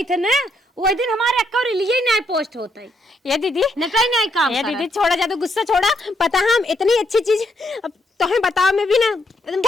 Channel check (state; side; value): normal; both; correlation 0.75